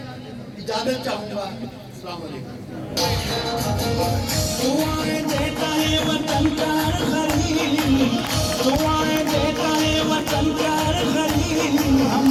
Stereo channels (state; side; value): identical; both; correlation 1.00